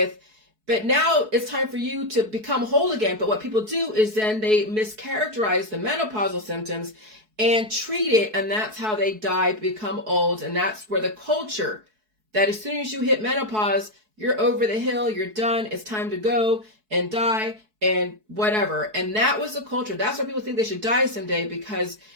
But now it's time for you to become whole again. But what people do is then they mischaracterize the menopausal symptoms and treat it, and that's how they die, become old. And that's where the culture that as soon as you hit menopause, you're over the hill, you're done, it's time to go and die and whatever. And that was the culture. That's why people think they should die someday, because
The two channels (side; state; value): left; late; 4.7 ms